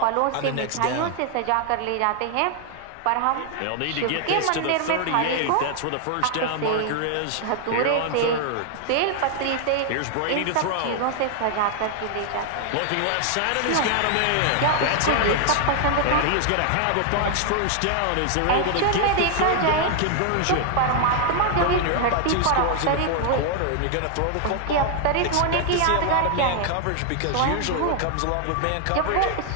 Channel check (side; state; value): both; different; correlation 0.00